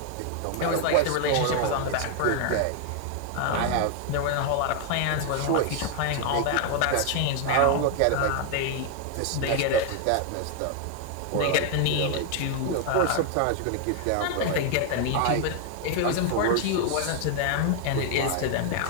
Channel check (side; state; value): both; different; correlation 0.00